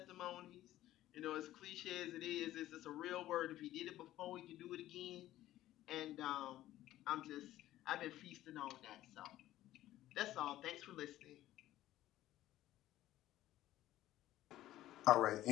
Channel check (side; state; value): right; quieter; 14.4 dB